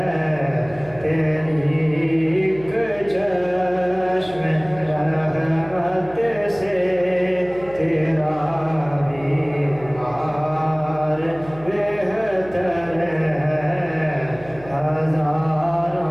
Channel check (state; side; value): noise; right; hum, 20 dB below the sound